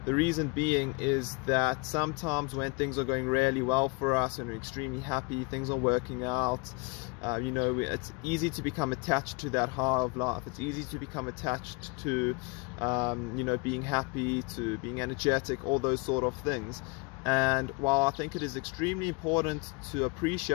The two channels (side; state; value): right; quieter; 28.8 dB